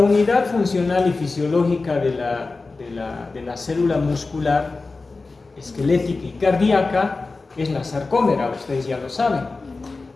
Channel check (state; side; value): quieter; right; 3.7 dB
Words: funcional y fisiológica de la célula muscular, esquelética y cardíaca es la sarcómera, ustedes ya lo saben.